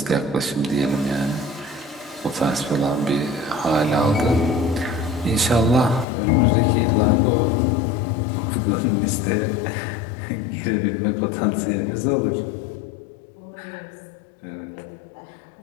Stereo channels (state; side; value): drops out; right; at 6.1 s